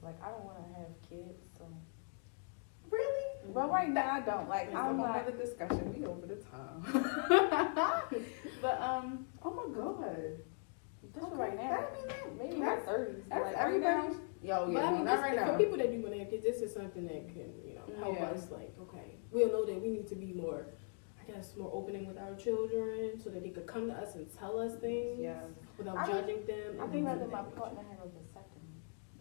like, I don't want to have kids, so. Really? But right now, I don't. Like, It's a I'm whole not. other discussion. We over the time. But oh my god. Just Okay. right now. I mean, that- Maybe in my 30s. That's Like, everybody. right Yo, But yeah, I mean, not right now. for people that do want to have kids, this is something that can, help Yeah. us. Like, okay, we'll know that we need to be more, more opening with our children, so that they could come to us and tell us things Yes. without I- judging them. now. I and think things rather of my that partner have a vasectomy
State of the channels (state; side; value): silent; right; 51 dB below the other